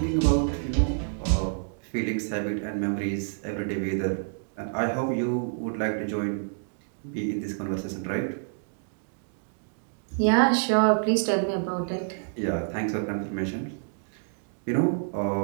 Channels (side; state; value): left; silent; digital silence